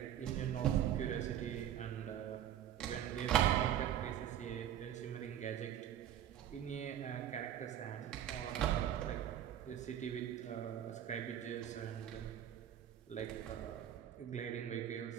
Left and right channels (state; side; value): quieter; left; 10.6 dB